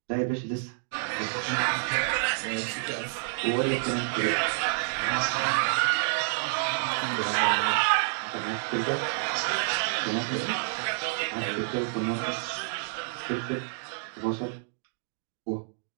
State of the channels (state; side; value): silent; left; digital silence